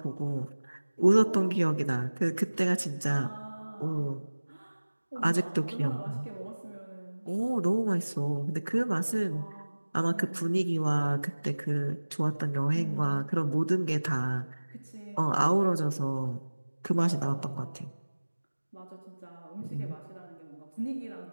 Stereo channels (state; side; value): inverted; both; correlation -1.00